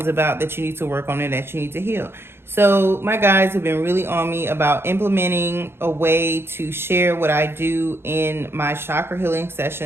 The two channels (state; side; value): late; left; 0.11 ms